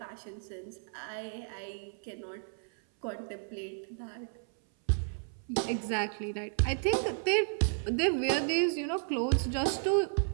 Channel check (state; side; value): silent; left; 56 dB below the other